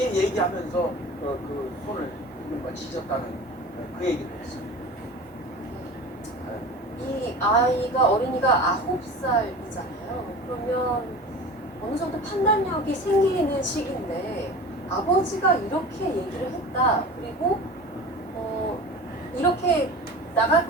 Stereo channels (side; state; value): both; normal; correlation 0.36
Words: 얘기하면서 그 손을 이른바 지졌다는 그 얘기를 했습니다. 이 아이가 어린이가 9살이잖아요. 그러면 어느 정도 판단력이 생기는 시기인데 아버지가 이렇게 얘기를 했다. 그리고 이렇게 나갈